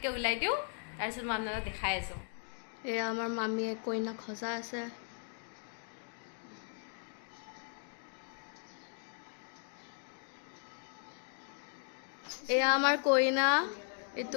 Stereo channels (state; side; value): silent; right; 53 dB below the other